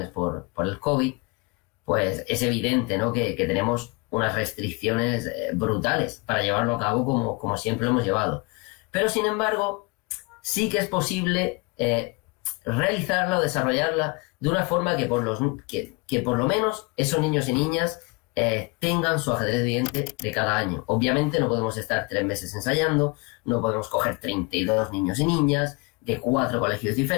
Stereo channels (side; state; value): right; quieter; 27.2 dB